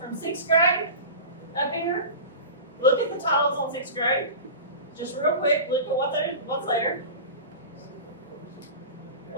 6th grade up here, look at the titles on 6th grade. Just real quick, look at what's there.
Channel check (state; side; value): inverted; both; correlation -0.31